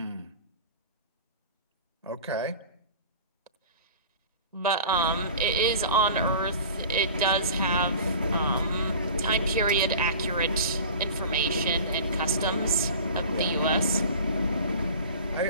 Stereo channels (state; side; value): inverted; both; correlation -0.39